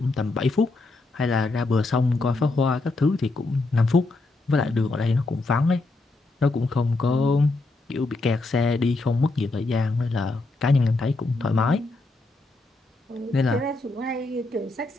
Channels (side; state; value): right; quieter; 3.2 dB